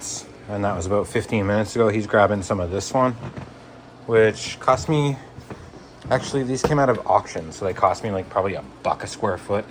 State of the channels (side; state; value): both; identical; correlation 1.00